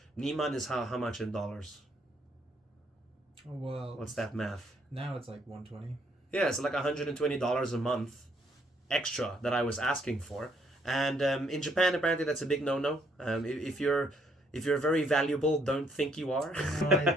Niman is how much in dollars? Well, What's that math? Now it's like 120. Yeah, it's like $120 a month extra that I was asking for. And in Japan, apparently that's a big no-no. If you're very valuable, don't think you are. No,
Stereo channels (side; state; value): both; normal; correlation 0.69